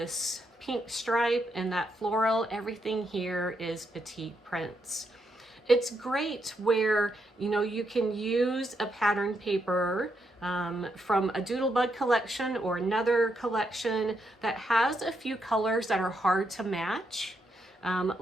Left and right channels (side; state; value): both; normal; correlation 0.79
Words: pink stripe and that floral, everything here is Petite prints. It's great where, you know, you can use a pattern paper from a Doodlebug collection or another collection that has a few colors that are hard to match.